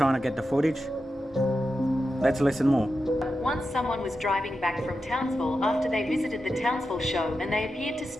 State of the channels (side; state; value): both; normal; correlation 0.90